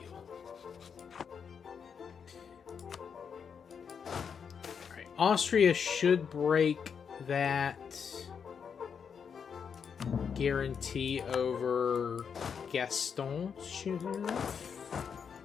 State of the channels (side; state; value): right; quieter; 6.8 dB